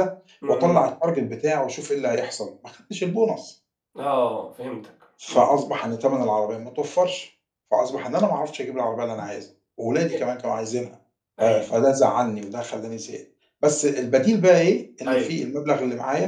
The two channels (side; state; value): both; identical; correlation 1.00